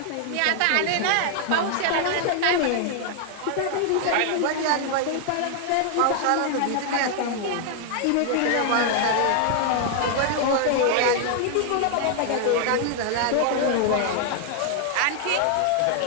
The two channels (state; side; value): different; both; correlation 0.00